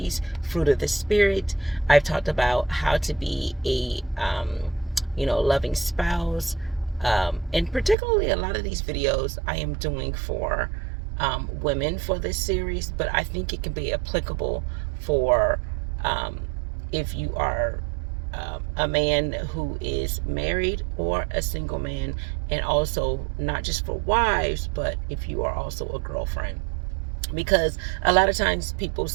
Fruit of the Spirit. I've talked about how to be a, loving spouse, and particularly a lot of these videos I am doing for women for this series, but I think it can be applicable for um, if you are a man who is married or a single man, and also not just for wives, but if you are also a girlfriend. Because a lot of times people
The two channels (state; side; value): drops out; left; at 8.0 s